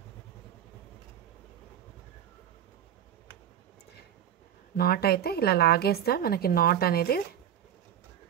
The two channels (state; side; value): quieter; left; 10.1 dB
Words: నాట్ అయితే ఇలా లాగేస్తే మనకి నాట్ అనేది